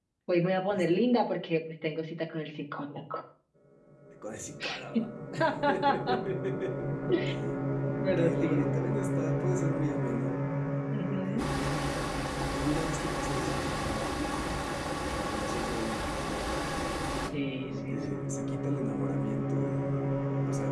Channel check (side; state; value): both; identical; correlation 1.00